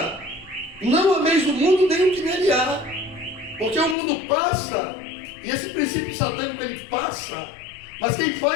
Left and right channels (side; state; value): right; drops out; at 4.0 s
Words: não ameis do mundo nem o que nele há. Porque o mundo passa, e esse princípio satânico ele passa, mas quem